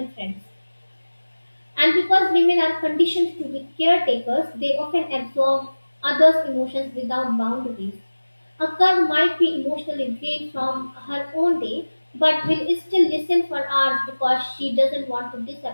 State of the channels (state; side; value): inverted; both; correlation -1.00